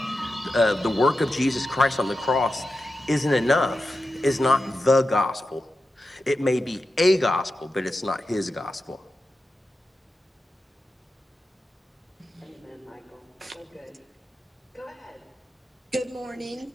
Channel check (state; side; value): normal; both; correlation 0.90